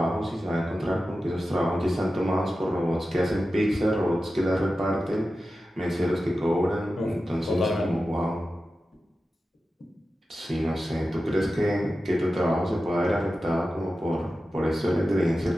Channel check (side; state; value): both; normal; correlation 0.93